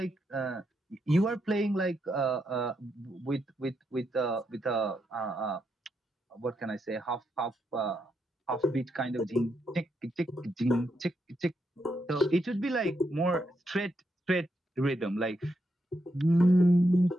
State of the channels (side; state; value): both; normal; correlation 0.81